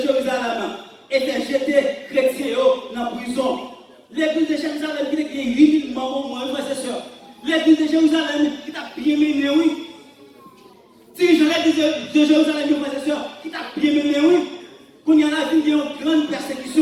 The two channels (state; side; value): identical; both; correlation 1.00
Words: Jérusalem. Et fait jeter chrétiens dans la prison. L'église de Jérusalem qui a 8000 membres, moi, frères et sœurs. L'église de Jérusalem qui t'a bien mené, oui. Si je l'église de Jérusalem, frères et sœurs, qui t'a bien mené, oui. fin de une grande